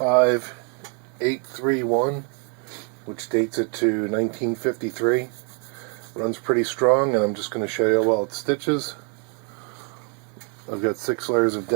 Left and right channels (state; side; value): quieter; left; 38.1 dB